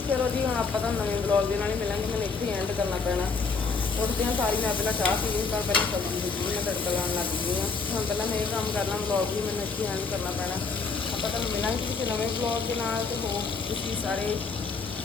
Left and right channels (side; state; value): right; quieter; 4.7 dB